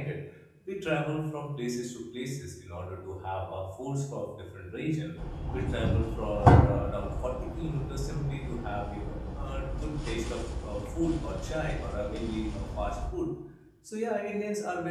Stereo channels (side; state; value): both; identical; correlation 1.00